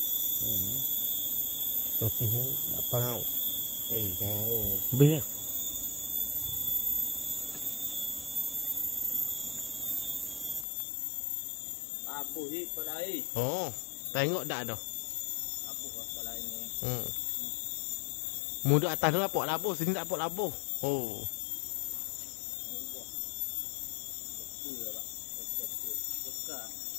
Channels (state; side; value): drops out; right; at 10.7 s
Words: Tapi apa kau? Kau. Biar. Labuh je pada air. Oh, tengok dah dah. Labuh pada air ni. Mu duduk atas tu nampak labuh, sini tak nampak labuh. Oh.